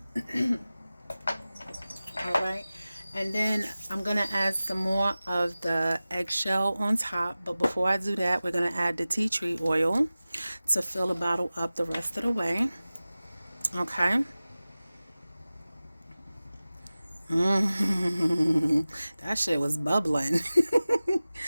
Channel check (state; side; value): inverted; both; correlation -0.97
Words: All right. And then I'm going to add some more of the eggshell on top. But before I do that, we're going to add the tea tree oil to fill the bottle up the rest of the way. Okay. That shit was bubbling.